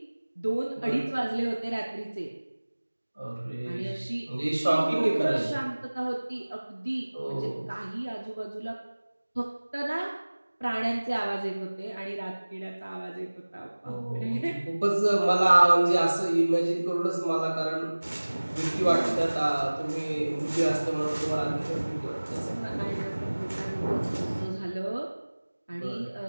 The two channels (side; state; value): both; inverted; correlation -1.00